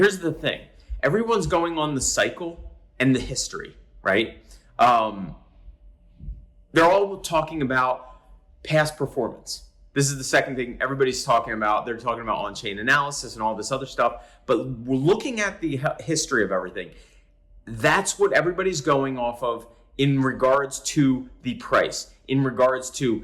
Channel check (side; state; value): both; identical; correlation 1.00